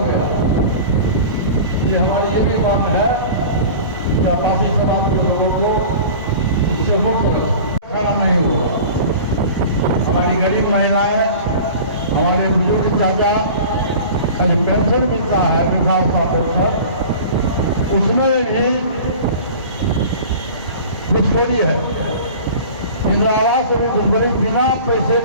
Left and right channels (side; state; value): both; inverted; correlation -0.39